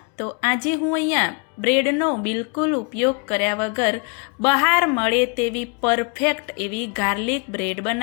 તો આજે હું અહીંયા બ્રેડનો બિલકુલ ઉપયોગ કર્યા વગર બહાર મળે તેવી પરફેક્ટ એવી ગાર્લિક બ્રેડ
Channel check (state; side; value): quieter; right; 35.3 dB